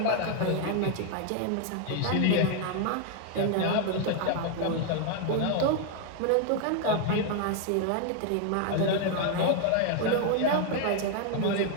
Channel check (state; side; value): different; both; correlation 0.00